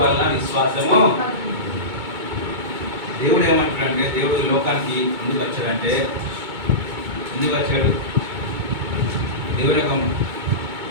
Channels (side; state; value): left; late; 2.2 ms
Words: విశ్వాసము. దేవుడు ఏమంటాడంటే, దేవుడు లోకానికి ఎందుకు వచ్చాడు? దేవుడు యొక్క